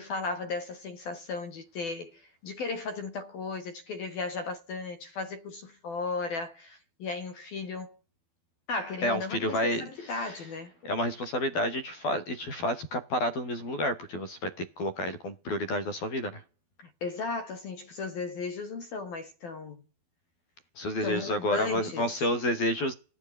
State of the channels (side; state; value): right; late; 12 ms